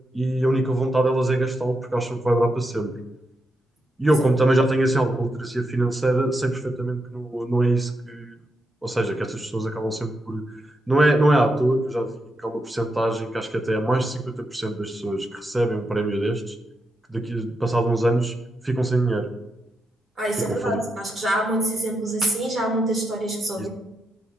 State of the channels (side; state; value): both; normal; correlation 0.84